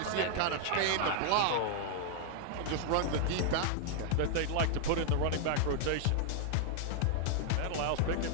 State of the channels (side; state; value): both; different; correlation -0.01